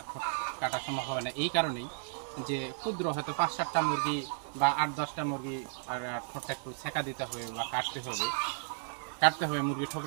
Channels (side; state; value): left; silent; digital silence